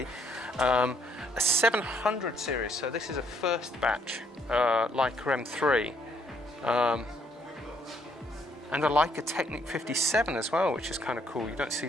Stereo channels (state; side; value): normal; both; correlation 0.68